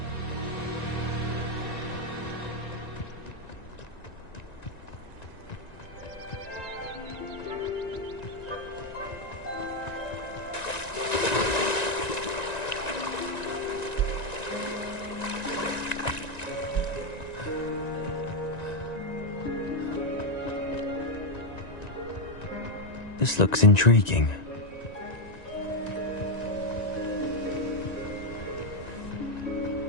This looks intriguing.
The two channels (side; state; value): right; late; 1.9 ms